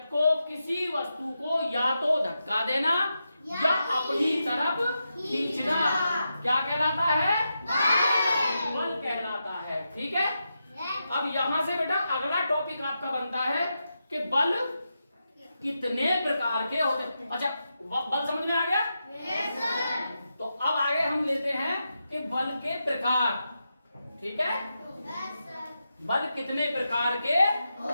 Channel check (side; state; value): both; inverted; correlation -0.87